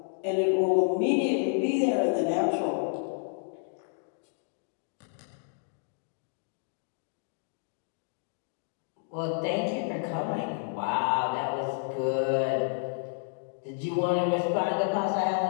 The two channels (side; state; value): right; silent; digital silence